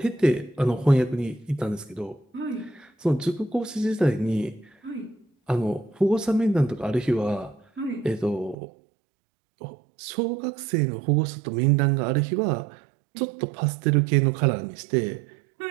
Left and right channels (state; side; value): drops out; left; at 8.6 s